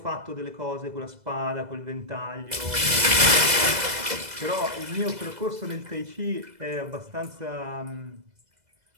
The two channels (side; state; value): left; late; 2.0 ms